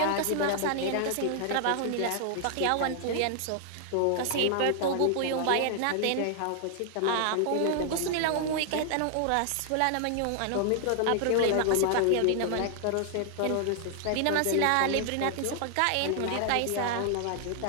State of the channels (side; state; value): both; different; correlation 0.00